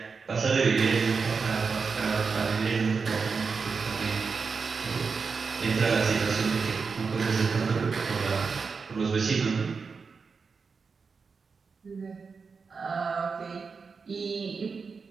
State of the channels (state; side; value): quieter; left; 5.1 dB